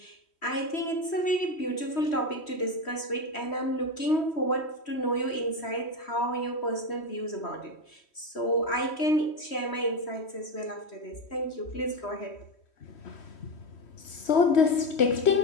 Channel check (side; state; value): right; late; 3.1 ms